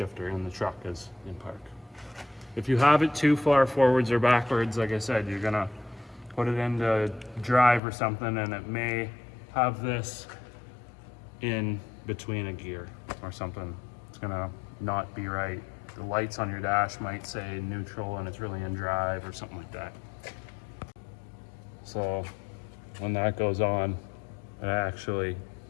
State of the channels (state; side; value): drops out; right; at 7.8 s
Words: in the truck is in park. If you have it too far forwards or backwards, like I said, you're gonna put it into drive or something and it may have this in between a gear or something. It's gonna not be right. The lights on your dash might say neutral and it's really in drive or something like that. So when that goes on, it actually